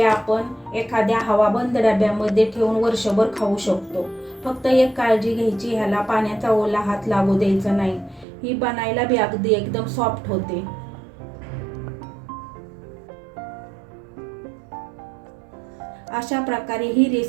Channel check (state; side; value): drops out; left; at 8.2 s